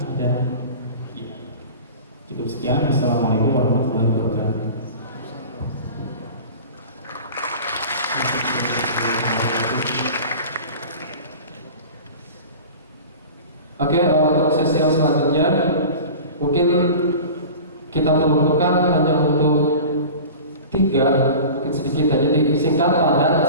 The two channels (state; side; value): inverted; both; correlation -0.37